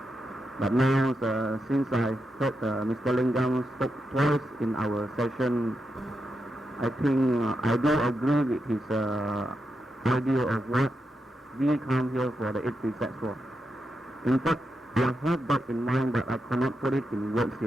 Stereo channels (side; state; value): both; normal; correlation 0.86